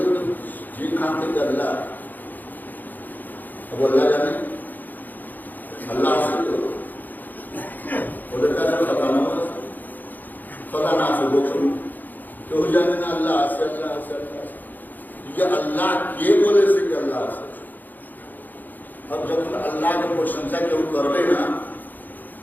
जी खान से अल्लाह अब अल्लाह जाने अल्लाह से तो बोलता है पता ना से बोल क्यों जाने ना अल्लाह से ये अल्लाह के बोले से कि अल्लाह से अब जब अल्लाह की प्रशंसा क्यों करवे ना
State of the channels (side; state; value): right; late; 0.086 ms